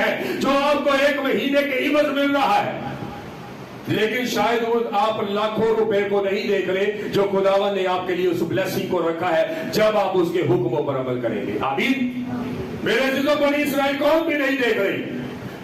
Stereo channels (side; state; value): both; identical; correlation 1.00